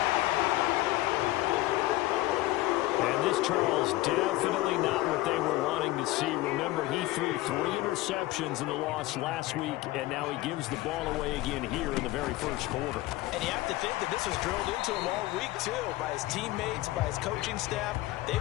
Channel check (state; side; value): quieter; right; 17.8 dB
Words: And this, Charles, definitely not what they were wanting to see. Remember, he threw 3 interceptions in the loss last week, and now he gives the ball away again here in the very first quarter. And you have to think that this was drilled into him all week, too, by his teammates, by his coaching staff.